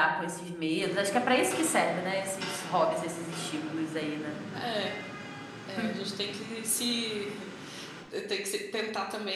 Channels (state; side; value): identical; both; correlation 1.00